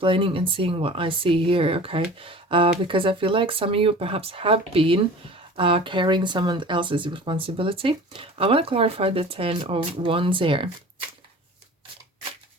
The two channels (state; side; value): normal; both; correlation 0.41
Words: and seeing what I see here, okay? Because I feel like some of you perhaps have been carrying someone else's responsibility. I want to clarify the 10 of Wands here.